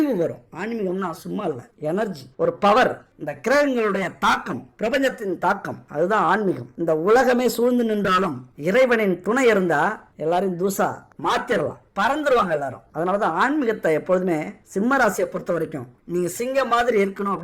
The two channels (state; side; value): identical; both; correlation 1.00